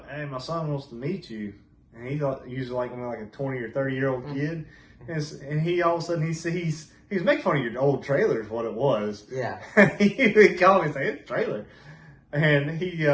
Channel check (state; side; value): identical; both; correlation 1.00